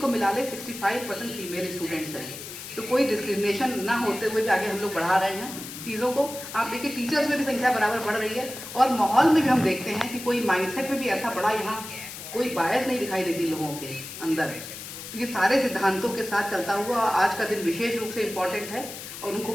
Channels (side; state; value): left; noise; hiss, 11 dB below the sound